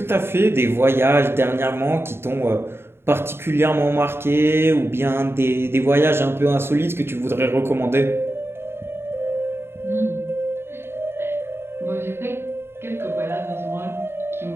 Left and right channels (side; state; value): left; late; 0.11 ms